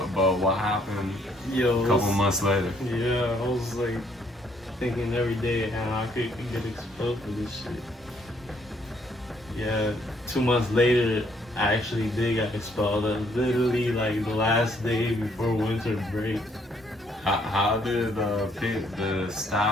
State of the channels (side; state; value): both; normal; correlation 0.68